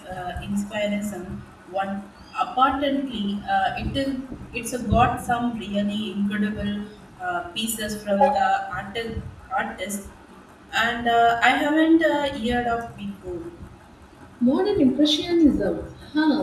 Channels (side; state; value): both; identical; correlation 1.00